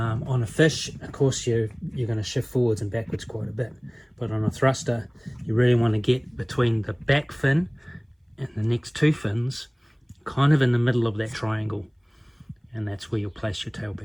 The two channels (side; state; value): both; identical; correlation 1.00